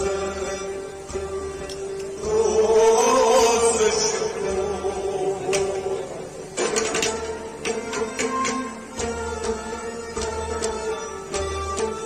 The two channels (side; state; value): both; identical; correlation 1.00